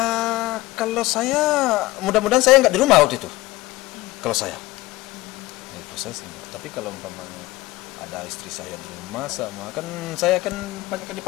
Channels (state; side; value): quieter; right; 18.8 dB